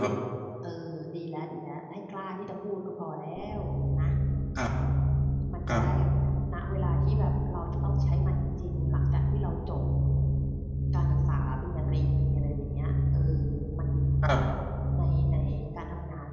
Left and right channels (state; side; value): identical; both; correlation 1.00